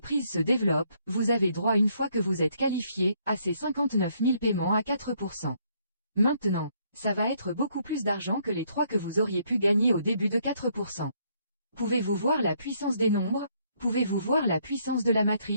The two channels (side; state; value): both; inverted; correlation -0.69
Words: se développe, vous avez droit une fois que vous êtes qualifié, à ces 59 000 paiements à 4%. Maintenant, ça va être beaucoup plus d'argent que les 3 que vous auriez pu gagner au début de 4%. Pouvez-vous voir la puissance des nombres? Pouvez-vous voir la puissance de la